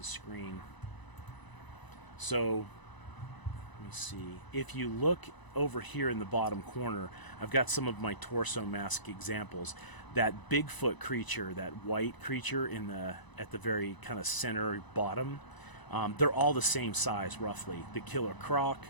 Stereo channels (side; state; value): right; late; 1.0 ms